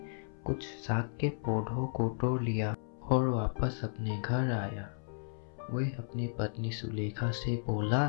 कुछ साग के पौधों को तोड़ लिया और वापस अपने घर आया। वह अपनी पत्नी सुलेखा से बोला,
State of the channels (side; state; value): right; silent; 55 dB below the other